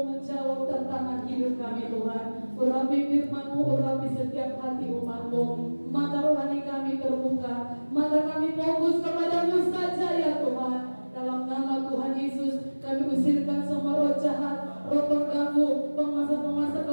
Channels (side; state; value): both; inverted; correlation -1.00